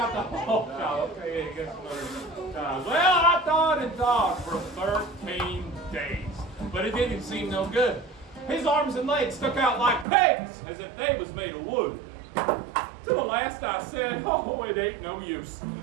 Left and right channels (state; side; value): drops out; left; at 10.1 s